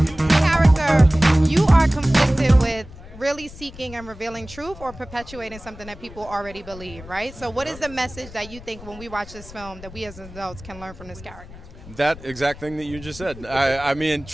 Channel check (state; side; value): noise; left; rumble, 17 dB below the sound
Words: Character, you are conflicted with really seeking and revealing truth or perpetuating something that people already believe, right? So what is the message that you think when we watch this film that we as adults can learn from this character? That exact thing that you just said. I mean,